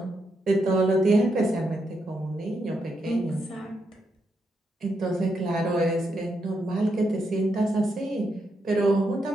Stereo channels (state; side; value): normal; both; correlation 0.81